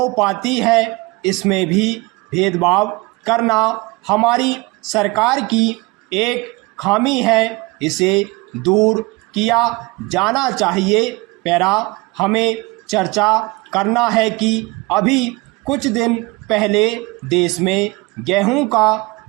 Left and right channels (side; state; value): left; quieter; 24.3 dB